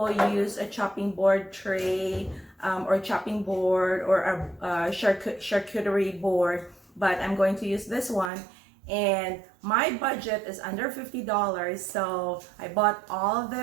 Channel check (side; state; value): left; drops out; at 8.3 s